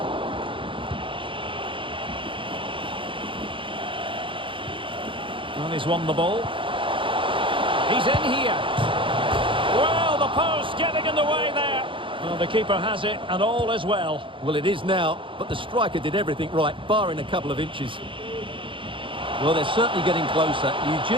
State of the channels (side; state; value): left; late; 0.25 ms